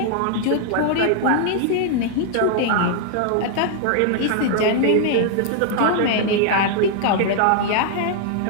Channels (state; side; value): different; both; correlation 0.00